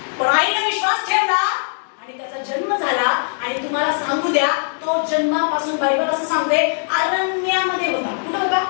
पण आईने विश्वास ठेवला आणि त्याचा जन्म झाला. आणि तुम्हाला सांगू द्या, तो जन्मापासून बायबल असं सांगते अरण्यामध्ये होता. कुठं होता?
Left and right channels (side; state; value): right; silent; digital silence